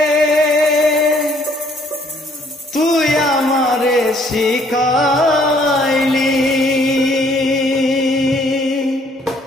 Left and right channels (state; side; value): normal; both; correlation 0.64